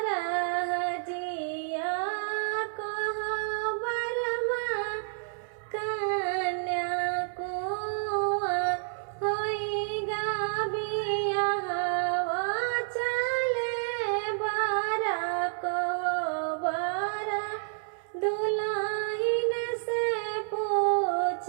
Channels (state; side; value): silent; left; 58 dB below the other